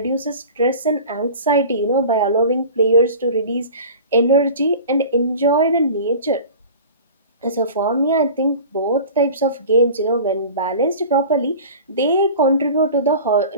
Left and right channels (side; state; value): both; inverted; correlation -0.38